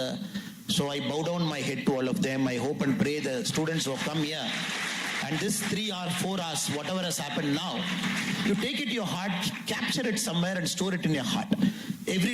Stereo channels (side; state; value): both; identical; correlation 1.00